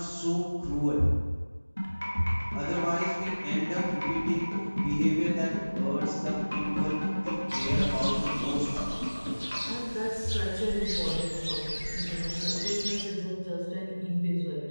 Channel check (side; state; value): both; inverted; correlation -1.00